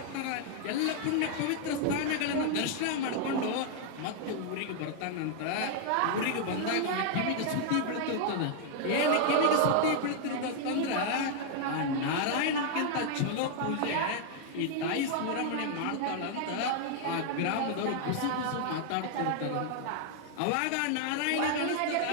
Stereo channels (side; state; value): both; different; correlation 0.00